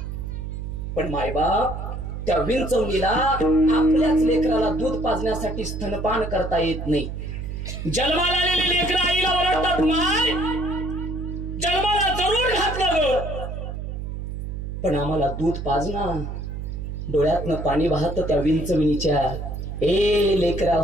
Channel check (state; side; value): noise; right; hum, 6 dB below the sound